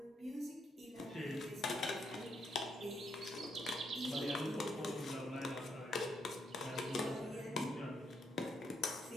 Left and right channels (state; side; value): normal; both; correlation 0.77